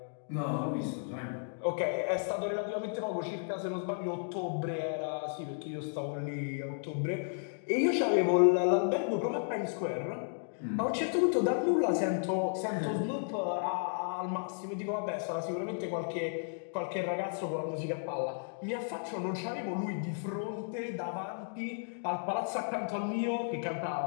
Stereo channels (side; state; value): right; silent; digital silence